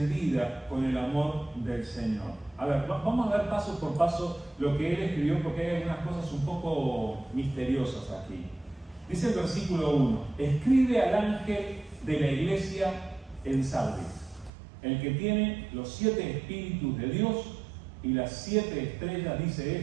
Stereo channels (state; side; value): drops out; left; at 14.5 s